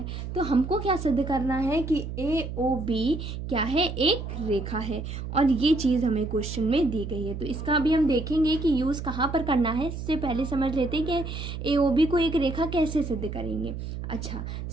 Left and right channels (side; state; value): right; noise; hum, 7 dB below the sound